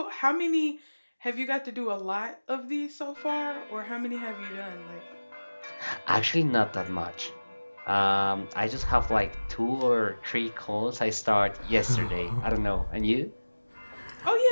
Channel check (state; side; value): inverted; both; correlation -1.00